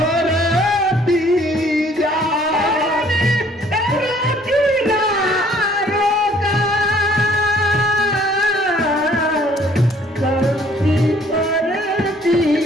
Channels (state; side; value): normal; both; correlation 0.59